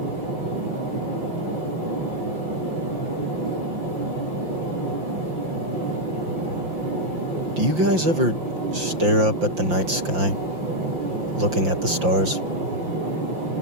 Do you guys ever stare up at the night sky, looking at the stars?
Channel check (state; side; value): late; left; 5.7 ms